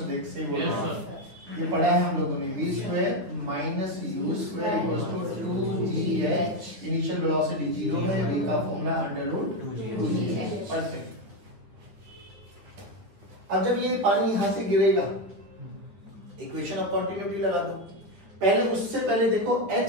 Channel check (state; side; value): late; left; 9.5 ms